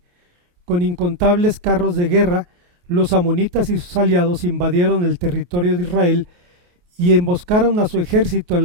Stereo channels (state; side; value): late; left; 28 ms